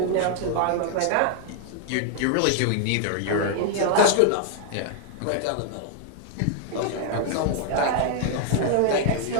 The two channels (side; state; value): both; different; correlation 0.00